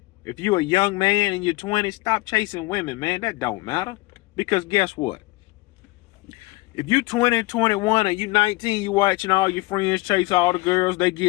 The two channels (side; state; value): right; quieter; 21.7 dB